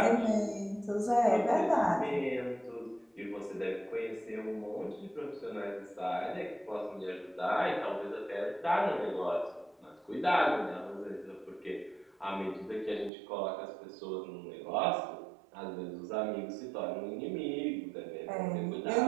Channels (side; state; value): left; drops out; at 13.1 s